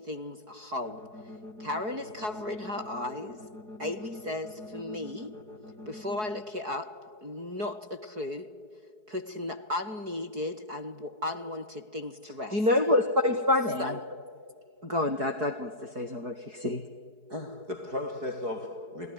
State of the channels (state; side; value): late; left; 4.7 ms